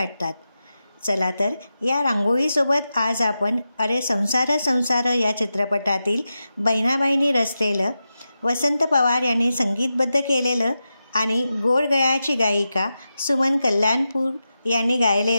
चला तर या रांगोळीसोबत आज आपण अरे संसार संसार या चित्रपटातील बहिणाबाईंनी रचलेलं, वसंत पवार यांनी संगीतबद्ध केलेलं आणि गोड गळ्याची गायिका सुमन कल्याणपूर यांनी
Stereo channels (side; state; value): both; inverted; correlation -0.91